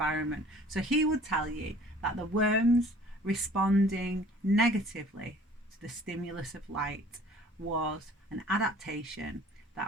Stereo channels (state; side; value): normal; both; correlation 0.51